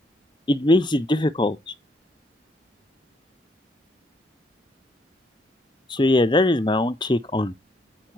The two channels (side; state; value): both; normal; correlation 0.70